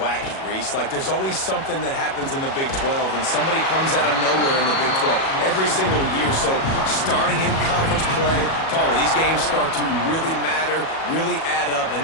Reese. Like, there's always something that happens in the Big 12, and somebody comes out of nowhere in the Big 12 every single year. So, starting in conference play, Paula, these games start to really matter, really add up,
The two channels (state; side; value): late; right; 37 ms